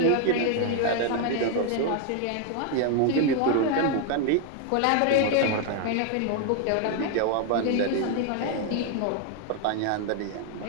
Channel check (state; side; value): different; both; correlation 0.00